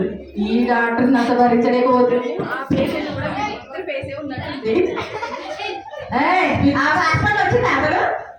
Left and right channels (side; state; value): both; identical; correlation 1.00